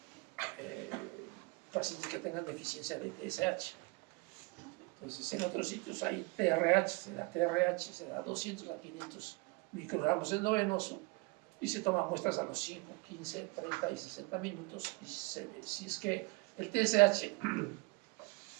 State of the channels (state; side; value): quieter; left; 26.3 dB